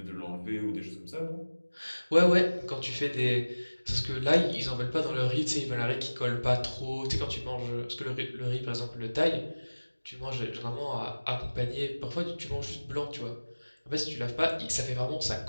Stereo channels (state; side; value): inverted; both; correlation -1.00